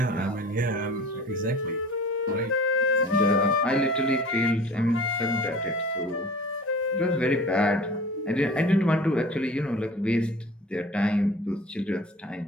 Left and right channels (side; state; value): both; normal; correlation 0.42